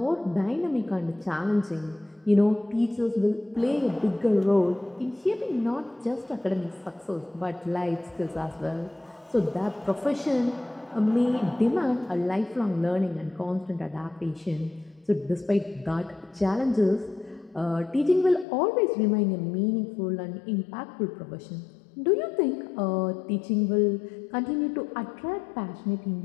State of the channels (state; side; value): drops out; right; at 18.4 s